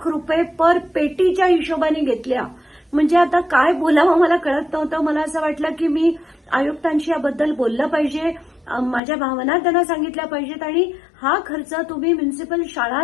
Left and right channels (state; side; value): drops out; right; at 9.0 s